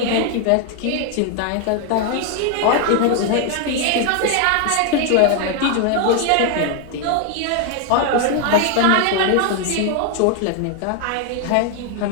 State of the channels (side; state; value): both; different; correlation 0.00